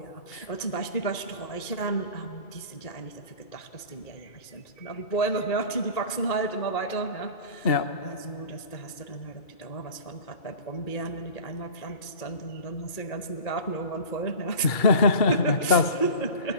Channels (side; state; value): right; late; 2.3 ms